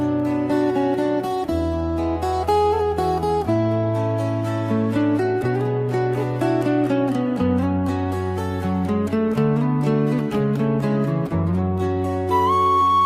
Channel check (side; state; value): both; identical; correlation 1.00